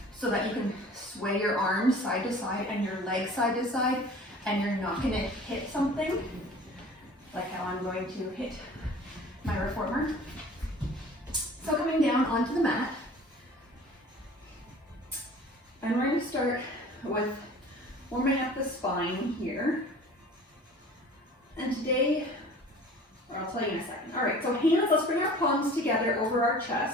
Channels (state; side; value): normal; both; correlation 0.45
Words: so that you can sway your arms side to side and your legs side to side, and you're not gonna hit something like how I'm going to hit my reformer. So coming down onto the mat, and we're gonna start with warming up the spine here. And today, or I'll tell you in a second. All right, so hands, let's bring our palms together over our